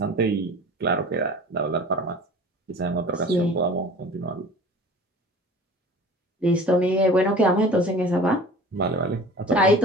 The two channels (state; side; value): normal; both; correlation 0.42